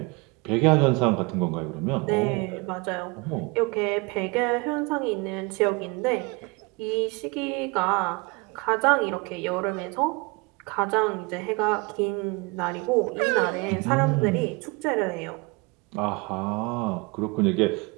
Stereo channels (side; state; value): left; quieter; 27.7 dB